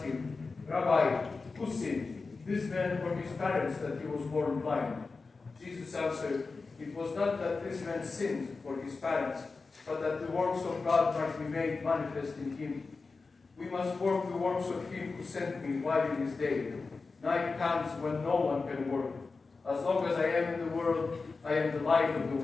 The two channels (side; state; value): right; quieter; 4.1 dB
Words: him, Rabbi, who sinned, this man or his parents, that he was born blind? Jesus answered, it was not that this man sinned or his parents, but that the works of God might be made manifest in him. We must work the works of him who sent me while it is day. Night comes when no one can work. As long as I am in the world, I am the light of the